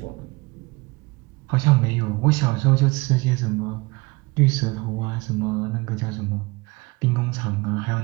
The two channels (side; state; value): left; quieter; 24.8 dB